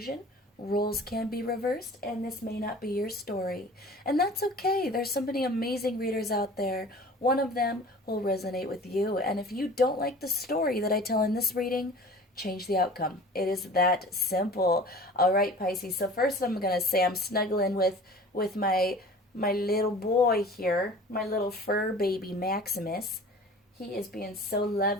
roles can be reversed, and this may not be your story. And that's okay. There's so many amazing readers out there. One of them will resonate with you. And if you don't like the story that I tell in this reading, change the outcome. It is that simple. All right, Pisces. So first I'm going to say I'm snuggling with my little boy here, my little fur baby Maximus. He is being so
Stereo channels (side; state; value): both; normal; correlation 0.43